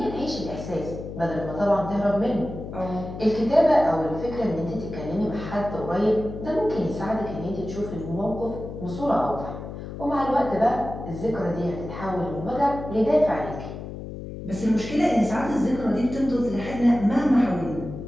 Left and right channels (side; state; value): left; noise; hum, 9 dB below the sound